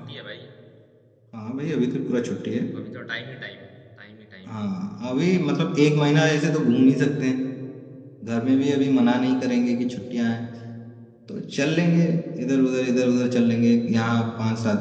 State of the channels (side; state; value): both; identical; correlation 1.00